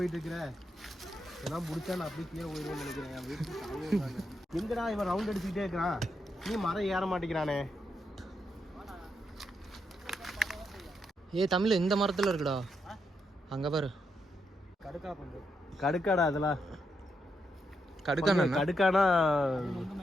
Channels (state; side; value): normal; both; correlation 0.82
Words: இருக்கிற எல்லாம் முடிச்சா நான் அப்படியே கீழே போயிடுவேன்னு நினைக்கிறேன். என் வீட்டுக்கு எங்கடா இவன் ரவுண்ட் அடிச்சுக்கிட்டே இருக்கிறான், நீ மரம் ஏற மாட்டேங்கிறானே. தமிழ் இந்த மரத்தில் இருக்குடா, அங்கே பாரு. கடுக்கா பங்கு. கடுக்காடா அதெல்லாம். கடுக்கானா